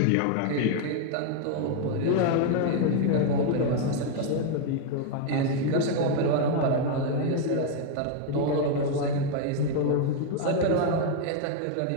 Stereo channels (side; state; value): both; different; correlation 0.00